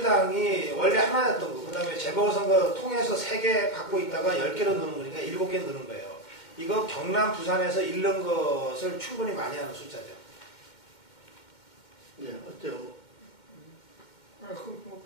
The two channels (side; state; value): right; late; 2.1 ms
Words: 원래 하나였던 거, 그 다음에 재보궐선거 통해서 3개 갖고 있다가 10개로 넣는 거니까 7개 넣는 거예요. 이거 경남, 부산에서 잃는 것을 충분히 많이 하는 숫자죠. 네, 어때요? 그건 뭐